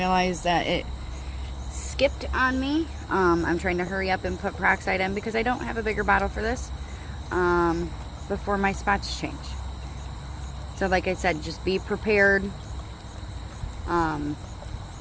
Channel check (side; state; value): both; identical; correlation 1.00